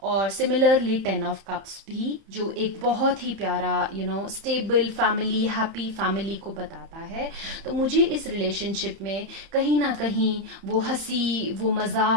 और सिमिलरली 10 ऑफ कप्स भी, जो एक बहुत ही प्यारा स्टेबल फैमिली, हैप्पी फैमिली को बताता है। तो मुझे इस रिलेशनशिप में कहीं ना कहीं वो हंसी, वो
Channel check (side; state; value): left; late; 31 ms